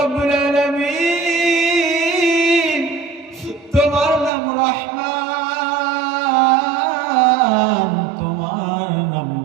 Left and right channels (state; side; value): drops out; left; at 4.3 s